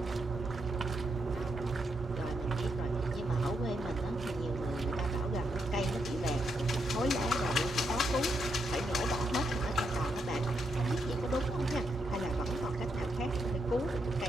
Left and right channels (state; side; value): normal; both; correlation 0.80